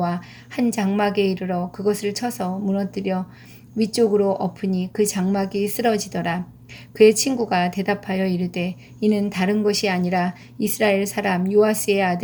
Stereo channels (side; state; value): both; identical; correlation 1.00